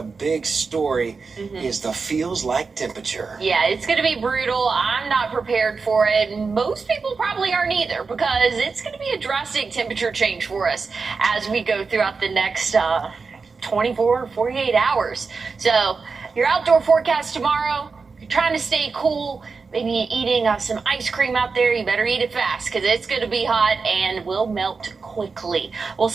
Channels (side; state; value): left; quieter; 4.7 dB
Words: big story is the feels like temperature. Yeah, it's going to be brutal. I'm not prepared for it. Most people probably aren't either, because it's going to be a drastic temperature change for us as we go throughout the next 24, 48 hours. So your outdoor forecast tomorrow, you're trying to stay cool, maybe eating some ice cream out there, you better eat it fast because it's going to be hot and will melt quickly. We'll